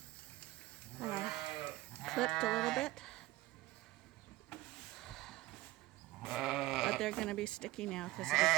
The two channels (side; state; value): left; quieter; 17.8 dB